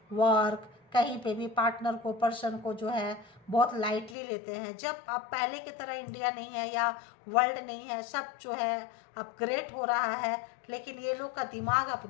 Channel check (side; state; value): right; drops out; at 4.2 s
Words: वर्क, कहीं पे भी पार्टनर को, पर्सन को जो है बहुत लाइटली लेते हैं। जब अब पहले की तरह इंडिया नहीं है या वर्ल्ड नहीं है, सब जो है अपग्रेड हो रहा है, लेकिन ये लोग का दिमाग